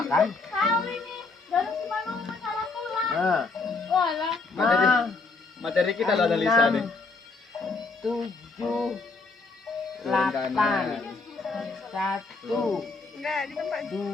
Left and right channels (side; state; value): right; quieter; 3.9 dB